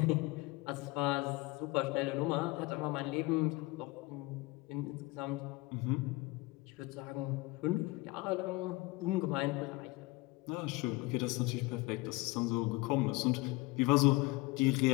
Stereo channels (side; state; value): right; quieter; 22.5 dB